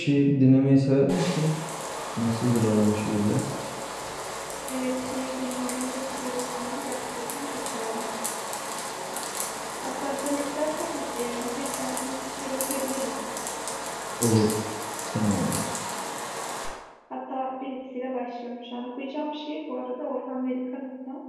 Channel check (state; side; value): identical; both; correlation 1.00